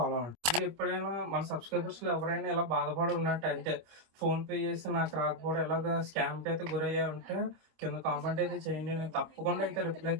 అవ్వండి. మీరు ఎప్పుడైనా మన సబ్స్క్రైబర్స్ లో ఎవరైనా ఇలా బాధపడి ఉన్నట్టు అంటే ఫోన్ పే చేసి నాకు రాకపోవడం ఎలాగా స్కామ్ అయితే గురయ్యా ఉంటే కింద కామెంట్ అయితే చేయండి, నేను తప్పకుండా అయితే రిప్లై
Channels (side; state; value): left; late; 25 ms